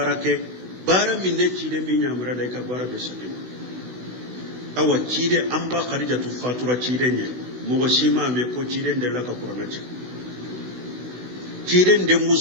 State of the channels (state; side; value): late; left; 16 ms